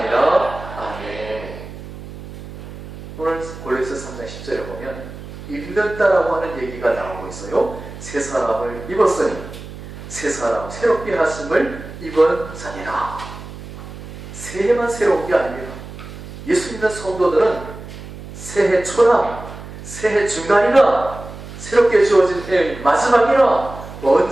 아멘. 오늘 골로새 3장 10절에 보면 입는다라고 하는 얘기가 나오고 있어요. 새 사람을 입었으니 새 사람 새롭게 하심을 입은 자니라. 새해만 새로운 게 아닙니다. 예수 믿는 성도들은 새해 초나 새해 중간이나 새롭게 주어진 해의 마지막이나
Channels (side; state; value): right; noise; hum, 13 dB below the sound